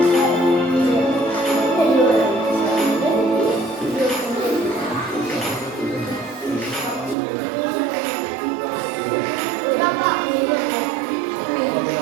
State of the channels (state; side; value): drops out; left; at 7.2 s